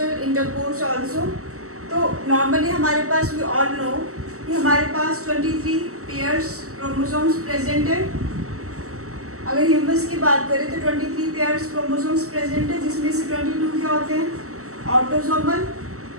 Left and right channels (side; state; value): left; late; 0.64 ms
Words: intercourse also. तो नॉर्मली हमारे पास, वी ऑल नो कि हमारे पास 23 पेयर्स क्रोमोसोम्स प्रेजेंट है। अगर ह्यूमंस की बात करें तो 23 पेयर्स क्रोमोसोम्स प्रेजेंट है, जिसमें से 22 क्या होते हैं, autosomal,